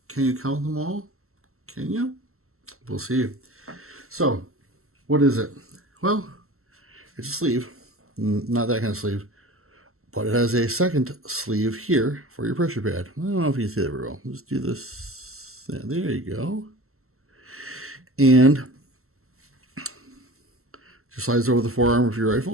Can you count them all? Can you? We'll see. So, what is it? Well, it's a sleeve. Not that kind of sleeve. But it has a second sleeve here for your pressure pad. I don't know if you can see that very well. Let's do this. Yeah, there you go. And just slides over the forearm of your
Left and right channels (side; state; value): left; late; 0.63 ms